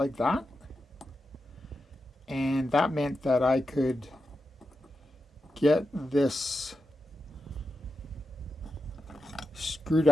that, and that meant that I could get this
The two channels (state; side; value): normal; both; correlation 0.89